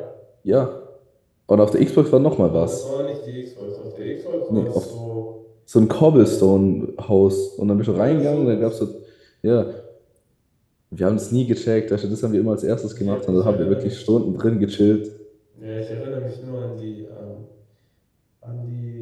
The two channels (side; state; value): both; identical; correlation 1.00